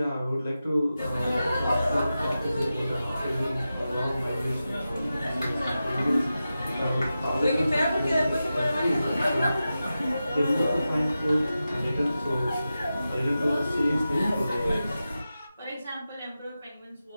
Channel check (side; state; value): both; inverted; correlation -0.92